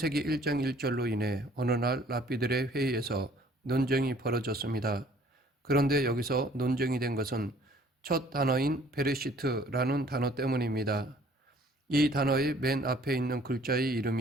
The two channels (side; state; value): both; normal; correlation 0.57